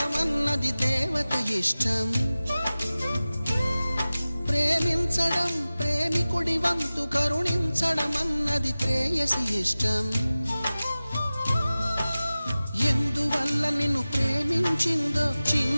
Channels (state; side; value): inverted; both; correlation -0.97